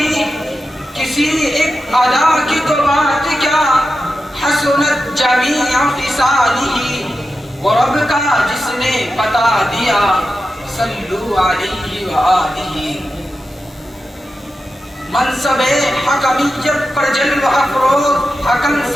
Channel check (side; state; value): both; normal; correlation 0.91